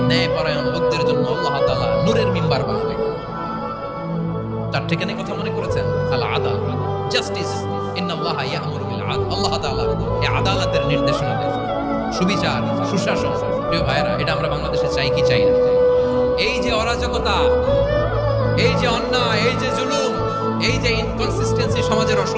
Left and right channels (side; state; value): both; identical; correlation 1.00